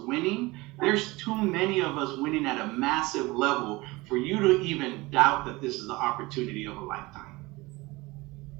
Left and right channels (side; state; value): left; quieter; 22.1 dB